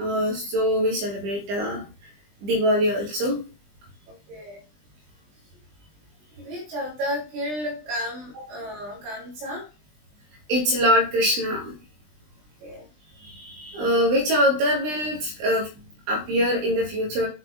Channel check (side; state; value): left; late; 20 ms